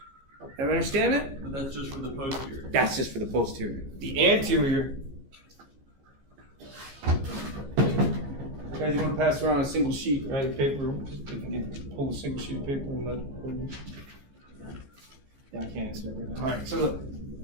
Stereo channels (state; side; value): late; left; 15 ms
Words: Everybody understand it? But that's just for the posterior. That's just for the posterior. The anterior. Guys, you want to pass around a single sheet, right? Of paper. If you can pull a single sheet of paper and let. Yeah, I can't answer that right now. All right. So look.